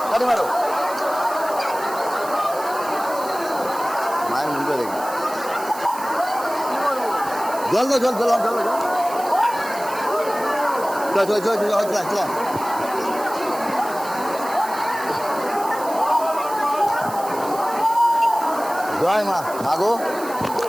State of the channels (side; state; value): right; noise; hiss, 15 dB below the sound